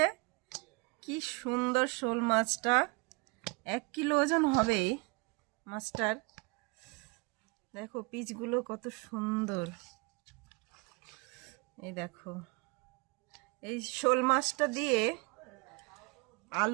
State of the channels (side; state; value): left; quieter; 28.4 dB